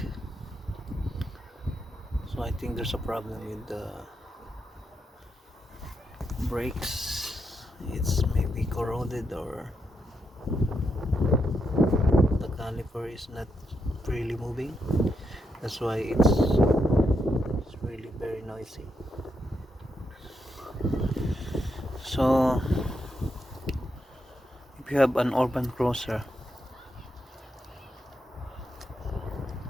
So I think there's a problem with the brakes. It's maybe corroded or the caliper is not really moving. That's why it's really very noisy. So if you have an urban cruiser,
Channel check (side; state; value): both; normal; correlation 0.82